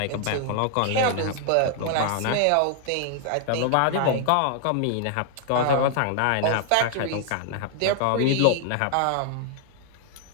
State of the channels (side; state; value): both; different; correlation 0.00